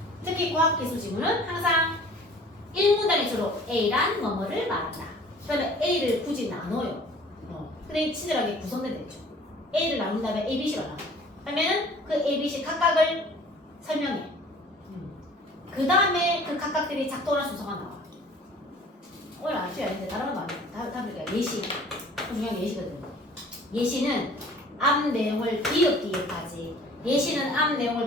특히 과학기술 지문은 항상 1문단에 주로 A란 뭐뭐를 말한다. 그 다음에 A를 굳이 나눠요. 근데 친절하게 구성된 되죠. A를 나눈 다음에 A, B, C가 나와. 그러면은 그 A, B, C 각각을 설명해. 그 다음에 그 각각들이 작동하는 순서가 나와. 오늘 아셔야 되는데 다른 건 안 돼. 다음 예시. 중요한 예시거든요. 예시는 앞 내용을 비읍비읍하지. 예시는 앞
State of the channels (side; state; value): both; normal; correlation 0.49